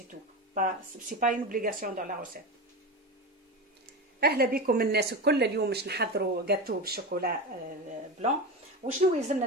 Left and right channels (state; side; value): normal; both; correlation 0.22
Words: tout. C'est pas une obligation dans la recette. اهلا بكم الناس الكل. اليوم باش نحضروا جاتو بالشوكولا بلون. وشنو يلزمنا